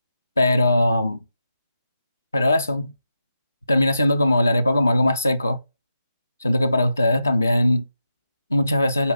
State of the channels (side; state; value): both; inverted; correlation -0.87